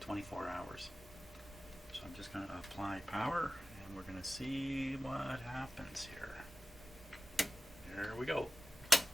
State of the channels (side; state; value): both; normal; correlation 0.95